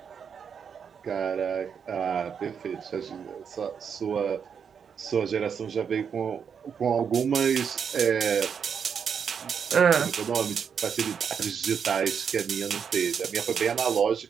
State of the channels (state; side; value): quieter; left; 7.0 dB